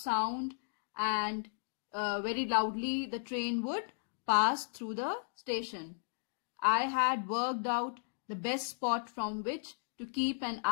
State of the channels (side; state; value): right; silent; digital silence